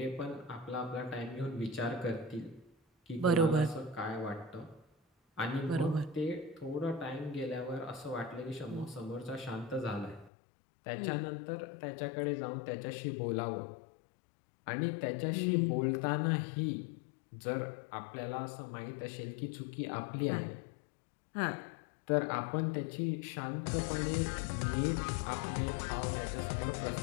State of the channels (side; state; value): right; drops out; at 10.3 s